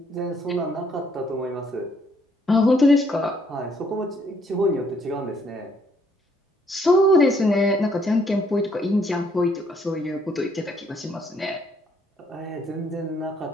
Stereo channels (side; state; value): both; normal; correlation 0.68